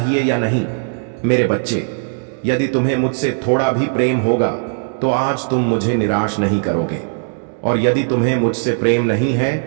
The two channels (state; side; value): silent; left; 67 dB below the other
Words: या नहीं। मेरे बच्चे, यदि तुम्हें मुझसे थोड़ा भी प्रेम होगा तो आज तुम मुझे निराश नहीं करोगे, और यदि तुम्हें मुझसे प्रेम नहीं